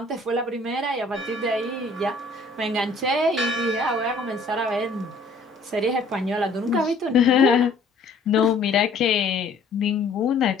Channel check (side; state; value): right; quieter; 3.3 dB